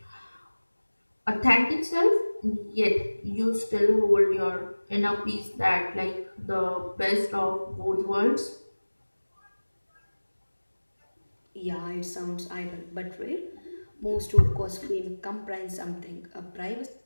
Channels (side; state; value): both; inverted; correlation -1.00